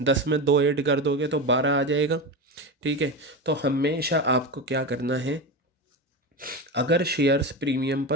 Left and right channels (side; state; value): both; normal; correlation 0.21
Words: 10 में 2 ऐड कर दोगे तो 12 आ जाएगा। ठीक है, तो हमेशा आपको क्या करना है, अगर शेयर्स प्रीमियम